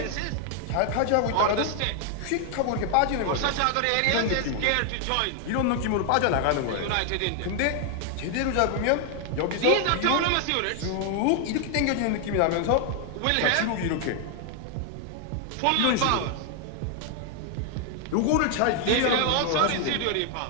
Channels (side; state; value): both; different; correlation 0.00